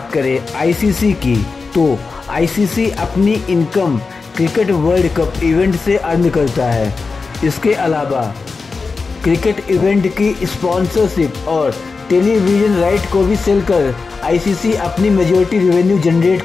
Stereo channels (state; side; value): quieter; right; 4.4 dB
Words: करें आईसीसी की तो आईसीसी अपनी income cricket world cup event से अर्न करता है। इसके अलावा क्रिकेट इवेंट की स्पॉन्सरशिप और टेलीविजन राइट को भी सेल कर आईसीसी अपनी मेजॉरिटी रेवेन्यू जनरेट